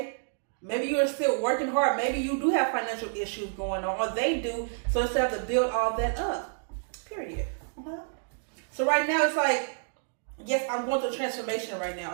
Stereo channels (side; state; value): left; silent; digital silence